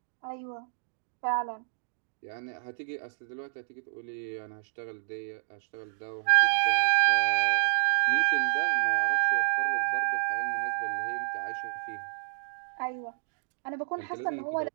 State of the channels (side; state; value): left; silent; digital silence